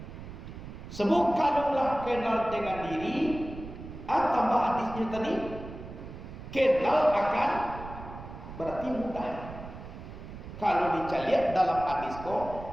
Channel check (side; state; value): right; noise; rumble, 12 dB below the sound